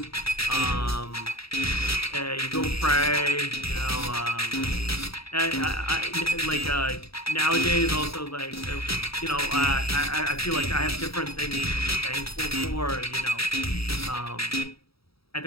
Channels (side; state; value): right; late; 0.76 ms